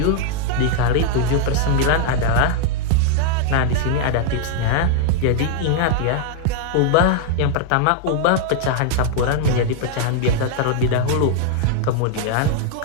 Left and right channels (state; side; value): different; both; correlation 0.00